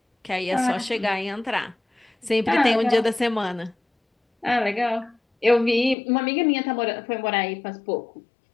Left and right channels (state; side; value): drops out; right; at 6.0 s